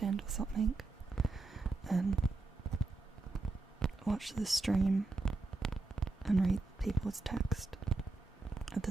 or something and watch the stream and read people's text. At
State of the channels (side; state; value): left; quieter; 3.5 dB